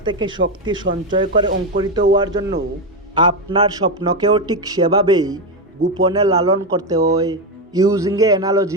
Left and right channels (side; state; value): both; normal; correlation 0.09